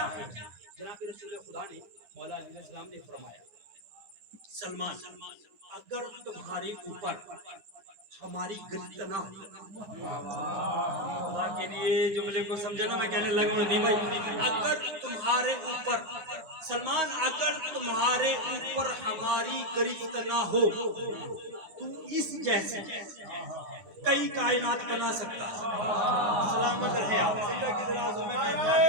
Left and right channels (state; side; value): late; left; 9.2 ms